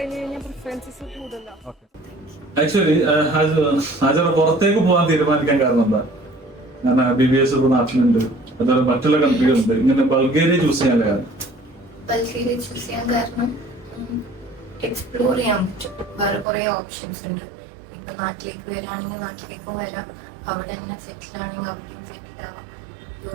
കഴിഞ്ഞാൽ പ്രിഫറൻസസ് കൂടുതലോ. ആക്ച്വലി ഹാജറ പുറത്തേക്ക് പോകാൻ തീരുമാനിക്കാൻ കാരണം എന്താ? ഞാൻ BBS നാട്ടിലുണ്ട്, അതുപോലെ മറ്റുള്ള കൺട്രികളുണ്ട്. ഇങ്ങനെ ബൾഗേറിയ ചൂസ് ചെയ്യാൻ കാരണം? ബൾഗേറിയ ചൂസ് ചെയ്യാൻ കാരണം എക്സ്പ്ലോർ ചെയ്യാൻ പറ്റും. വേറെ കുറെ ഓപ്ഷൻസ് ഉണ്ട്. ഇപ്പൊ നാട്ടിലേക്ക് വരാണെങ്കിൽ നാട്ടിലേക്കും വരാം, അവിടെ തന്നെ സെറ്റിൽ ആണെങ്കിൽ അവിടെയും സെറ്റിൽ ആവാം.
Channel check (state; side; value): drops out; left; at 16.4 s